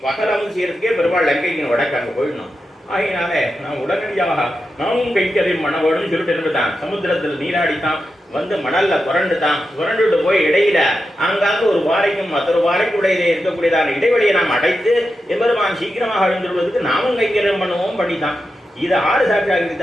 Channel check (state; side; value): normal; both; correlation 0.89